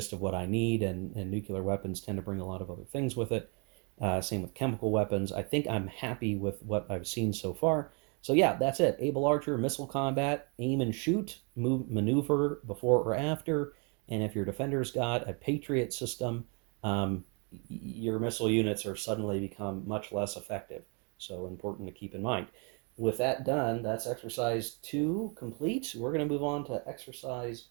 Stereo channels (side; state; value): left; quieter; 35.6 dB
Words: of what I need, and nuclear weapons tend to bring a lot of other things with it. Same with chemical weapons. I think I'm happy with what I've seen so far. So yeah, that's it. Able Archer, missile combat, aim and shoot, move, maneuver before or after, and if your defender's got a Patriot system, your missile units are suddenly become much less effective. So important to keep in mind. With that done, that's exercise 2 complete. We're going to move on to exercise